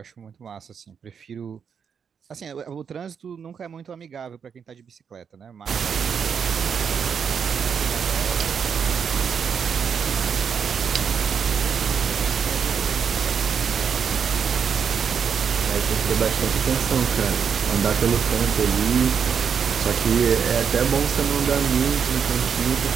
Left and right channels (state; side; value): quieter; left; 6.9 dB